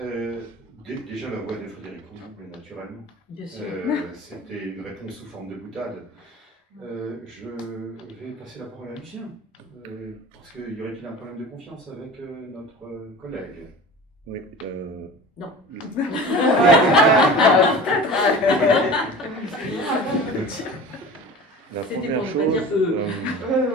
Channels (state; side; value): normal; both; correlation 0.37